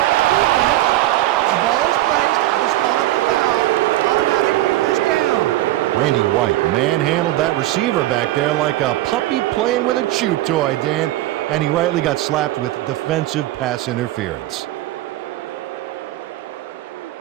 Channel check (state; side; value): quieter; left; 15.7 dB